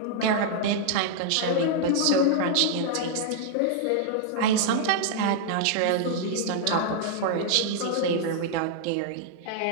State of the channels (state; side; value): different; both; correlation -0.01